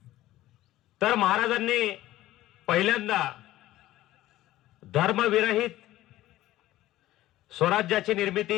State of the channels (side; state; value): right; quieter; 15.5 dB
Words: तर महाराजांनी पहिल्यांदा धर्मविरहित स्वराज्याची